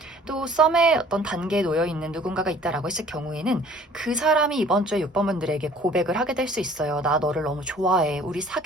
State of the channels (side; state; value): both; normal; correlation 0.52